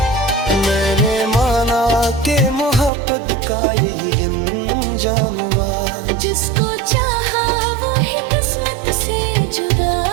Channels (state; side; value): drops out; left; at 2.9 s